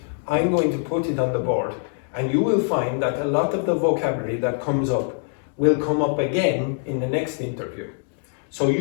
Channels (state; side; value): silent; right; 63 dB below the other